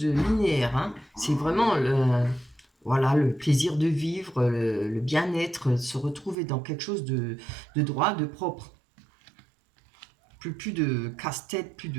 linéaire. Hein. C'est vraiment le plaisir de vivre, le bien-être, se retrouver dans quelque chose de droit, de propre. Plus de casse-tête, plus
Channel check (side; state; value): left; drops out; at 6.4 s